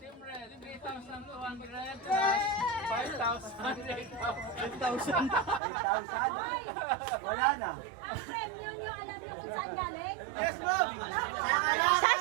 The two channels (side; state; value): left; drops out; at 5.6 s